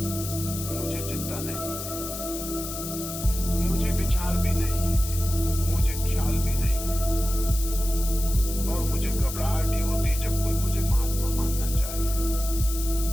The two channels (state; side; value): noise; left; hiss, 8 dB below the sound